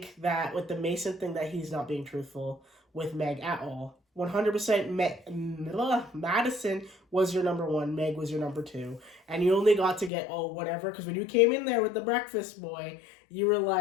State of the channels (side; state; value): right; drops out; at 10.1 s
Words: that with the Mason thing that he's not being truthful with Meg at all. 100% Madison was your number one, Meg was your number two, and you only got to get whatever, because when you came in there with the breakfast boy, you were